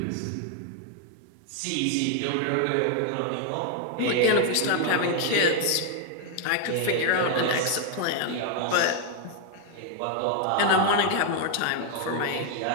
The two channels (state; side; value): different; both; correlation 0.00